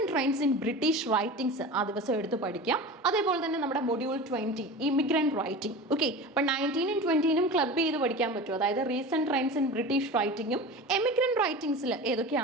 trends in British writings ആ ദിവസം എടുത്ത് പഠിക്കാം. അതേപോലെ തന്നെ നമ്മുടെ മൊഡ്യൂൾ 20 ഇമിഗ്രന്റ് റൈറ്റിംഗ്. ഓക്കെ, അപ്പോൾ 19-ഉം 20-നും ക്ലബ് ചെയ്ത് പഠിക്കാൻ പറ്റും. അതായത് റീസെന്റ് ട്രെൻഡ്സ് ഇൻ ബ്രിട്ടീഷ് റൈറ്റിംഗും എമിഗ്രന്റ് റൈറ്റിംഗ്സിൽ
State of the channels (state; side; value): normal; both; correlation 0.32